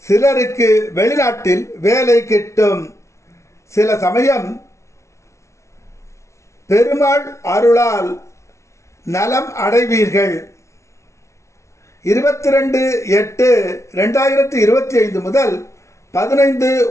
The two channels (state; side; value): late; right; 0.14 ms